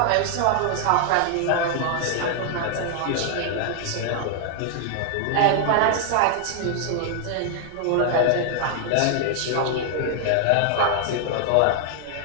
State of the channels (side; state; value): both; different; correlation 0.00